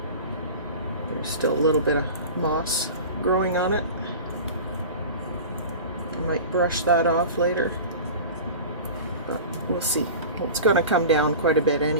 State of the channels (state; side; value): inverted; both; correlation -0.35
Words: There's still a little bit of moss growing on it. I might brush that off later, but we'll see. It's going to come down quite a bit